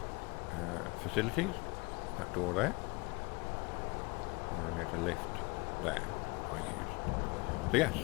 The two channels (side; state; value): right; quieter; 26.9 dB